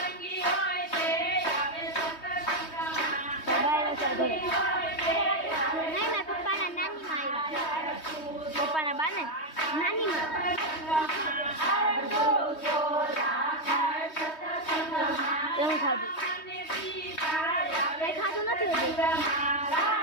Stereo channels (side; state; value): right; late; 3.2 ms